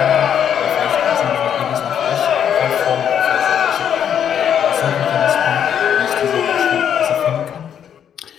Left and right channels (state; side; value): quieter; right; 8.8 dB